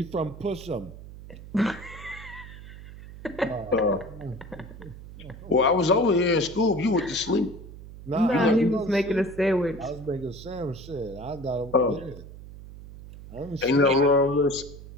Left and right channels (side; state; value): right; noise; hum, 15 dB below the sound